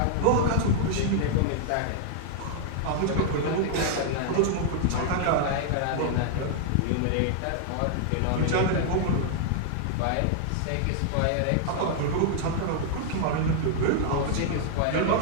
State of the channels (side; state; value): both; different; correlation 0.00